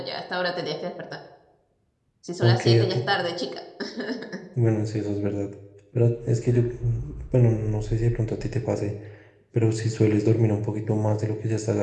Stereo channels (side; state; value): both; identical; correlation 1.00